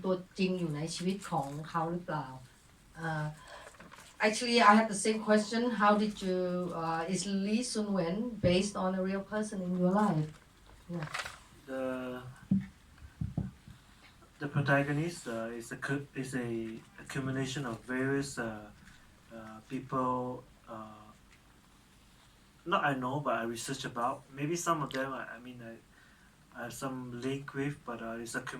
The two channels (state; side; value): identical; both; correlation 1.00